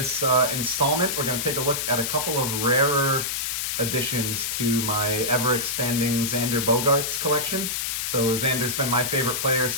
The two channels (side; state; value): left; noise; hiss, 1 dB below the sound